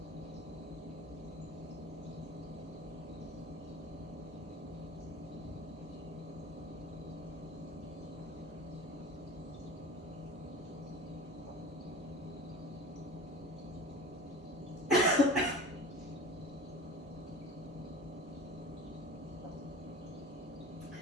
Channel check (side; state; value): both; normal; correlation 0.36